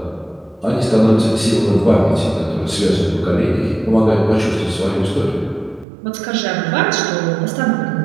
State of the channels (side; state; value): left; drops out; at 5.9 s